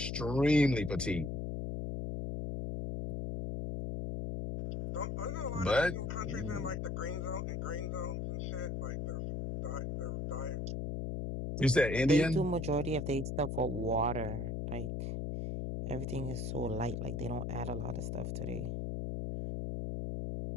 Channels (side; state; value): left; noise; hum, 2 dB below the sound